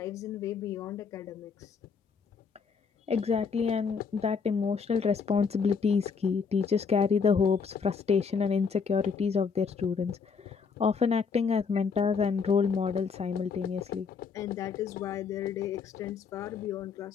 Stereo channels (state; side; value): quieter; right; 5.7 dB